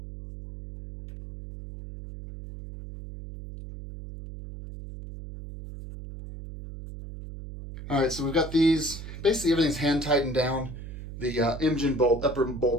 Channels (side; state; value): right; noise; hum, 11 dB below the sound